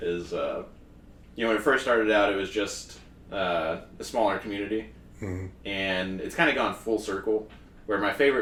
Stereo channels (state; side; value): identical; both; correlation 1.00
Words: when it first started out, it was just a smaller community, and it's kind of gone full circle. Where my